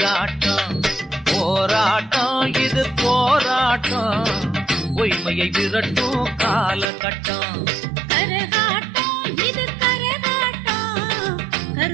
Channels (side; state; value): left; drops out; at 6.9 s